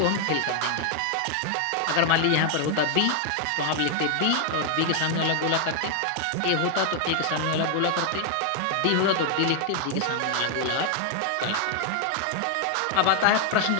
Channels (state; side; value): different; both; correlation 0.00